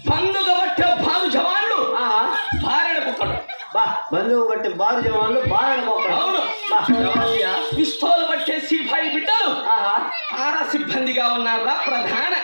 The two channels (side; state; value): both; inverted; correlation -1.00